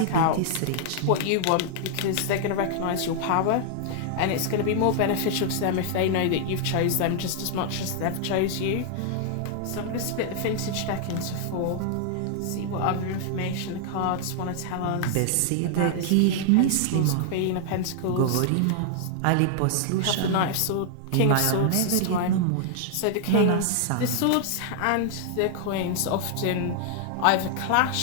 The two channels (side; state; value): both; different; correlation 0.00